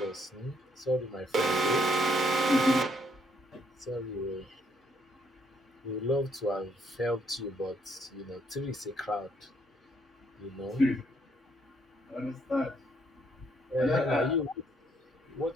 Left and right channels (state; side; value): normal; both; correlation 0.70